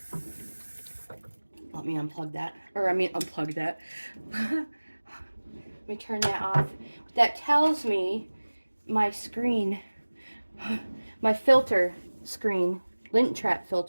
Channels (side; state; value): both; inverted; correlation -1.00